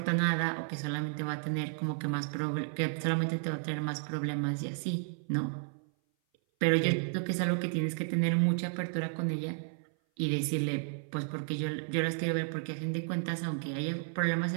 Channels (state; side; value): silent; left; 56 dB below the other